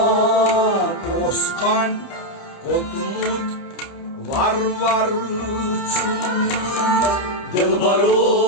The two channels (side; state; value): right; late; 29 ms